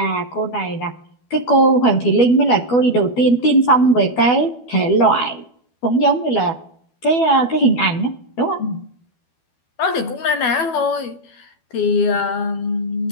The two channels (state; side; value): late; right; 12 ms